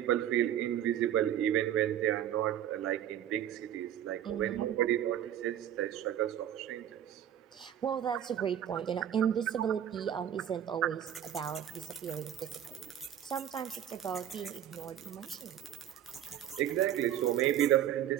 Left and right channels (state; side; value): quieter; left; 10.7 dB